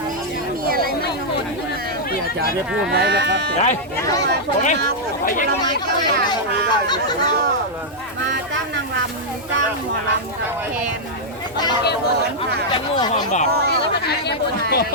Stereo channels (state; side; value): normal; both; correlation -0.06